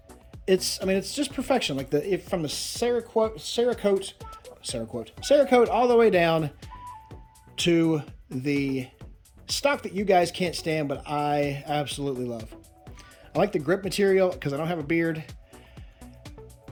it's just perfection. Like from the Cerakote all the way down to the stock that you guys can't stand, but I absolutely love. I like the grip material because I don't have a beard.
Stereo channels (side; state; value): both; identical; correlation 1.00